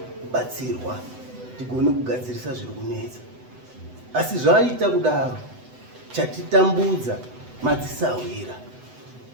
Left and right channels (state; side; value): late; left; 8.0 ms